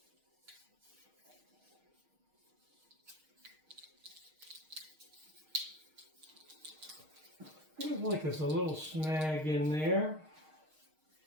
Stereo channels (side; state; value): left; late; 6.4 ms